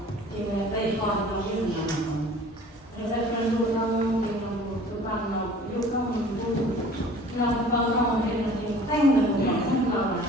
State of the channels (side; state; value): both; normal; correlation 0.47